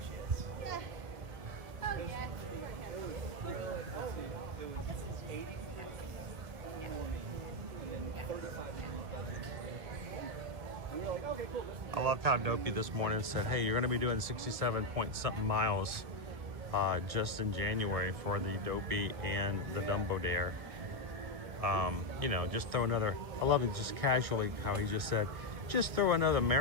I loved how Dopey this morning said, hey, you're going to be doing 67 point something miles just in January for the Dopey and the Dumbo Dare. You know, just throw another, I love it just casually how he just said, just throw another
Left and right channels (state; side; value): late; left; 1.4 ms